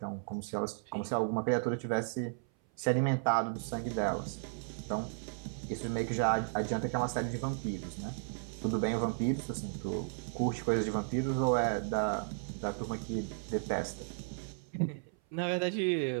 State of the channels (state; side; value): silent; left; 55 dB below the other